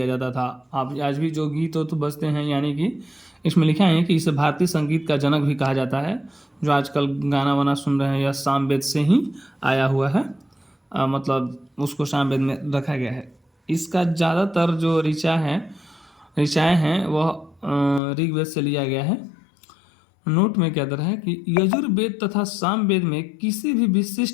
जाता था। आप आज भी जो गीत तो बजते हैं, यानी कि इसमें लिखा है कि इसे भारतीय संगीत का जनक भी कहा जाता है। जो आजकल गाना वाना सुन रहे हैं यह साम वेद से ही आया हुआ है, मतलब उसको साम वेद में रखा गया है। इसका ज़्यादातर जो ऋचाएँ हैं वह ऋग्वेद से लिया गया है। नोट में क्या दर है कि यजुर्वेद तथा सामवेद में किसी भी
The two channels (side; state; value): right; drops out; at 18.0 s